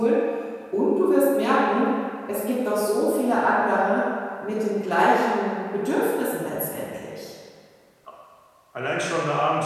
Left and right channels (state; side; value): identical; both; correlation 1.00